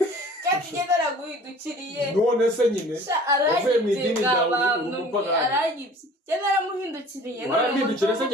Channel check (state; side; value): normal; both; correlation 0.47